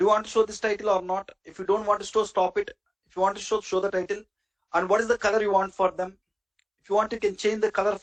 you want to show this title or not? If you don't want to show, stop it. If you want to show the title. And what is the color you want for them? If you want, you can change the color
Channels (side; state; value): both; identical; correlation 1.00